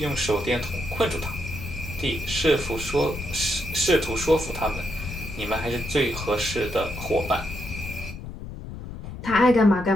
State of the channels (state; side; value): noise; left; rumble, 10 dB below the sound